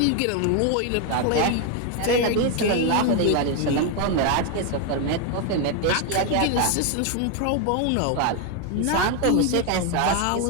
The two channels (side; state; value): both; different; correlation 0.01